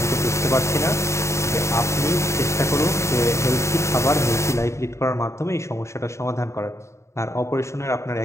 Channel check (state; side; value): late; right; 0.14 ms